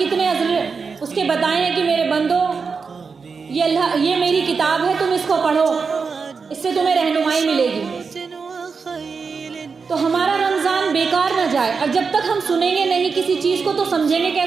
اس کے بتائے ہیں کہ میرے بندو، یہ میری کتاب ہے، تم اس کو پڑھو، اس سے تمہیں رہنمائی ملے گی. تو ہمارا رمضان بیکار نہ جائے. اور جب تک ہم سنیں گے نہیں کسی چیز کو تو سمجھیں گے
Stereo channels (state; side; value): quieter; left; 5.2 dB